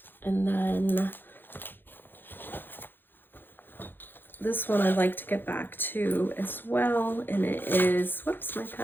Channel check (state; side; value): late; right; 0.097 ms